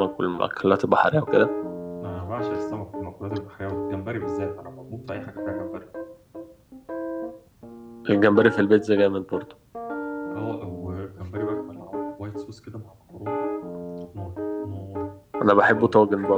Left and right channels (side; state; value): both; identical; correlation 1.00